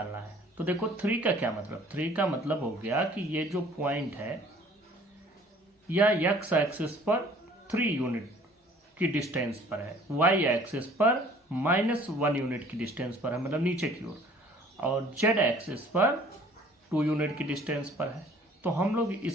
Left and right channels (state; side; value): normal; both; correlation 0.53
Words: है. तो देखो 3 का क्या मतलब? 3 का मतलब हो गया कि ये जो पॉइंट है या x एक्सिस पर 3 यूनिट की डिस्टेंस पर है, y एक्सिस पर -1 यूनिट की डिस्टेंस पर है, मतलब नीचे की ओर, और z एक्सिस पर 2 यूनिट की डिस्टेंस पर है. तो हम लोग